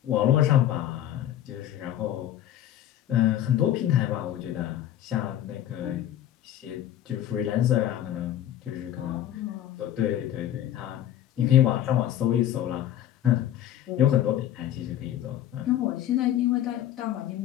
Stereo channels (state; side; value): quieter; right; 11.7 dB